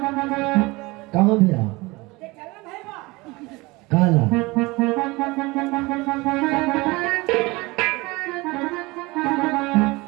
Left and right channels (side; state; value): left; quieter; 23.2 dB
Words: कहाँ भैया? काला